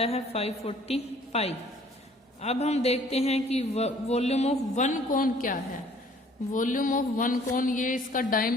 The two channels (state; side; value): normal; both; correlation 0.57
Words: है 540 पाई। अब हम देखते हैं कि वॉल्यूम ऑफ 1 कोन क्या है। वॉल्यूम ऑफ 1 कोन, ये इसका